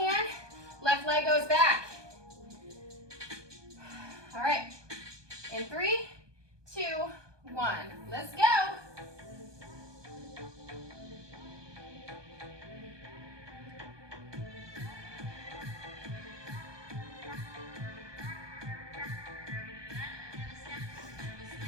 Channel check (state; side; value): late; left; 1.2 ms